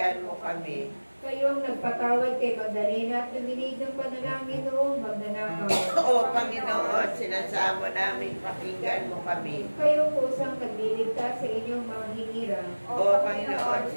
mo kami. kayong nagpatawad kay Magdalena at luminig ng panalangin noong magnanakaw, O Panginoon, sinasamo naming pakinggan mo kami. kayong kusang nagliligtas sa inyong mga hinira, O Panginoon,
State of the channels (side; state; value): both; inverted; correlation -1.00